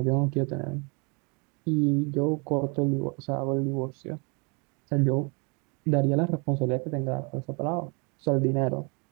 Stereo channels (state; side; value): quieter; left; 32.6 dB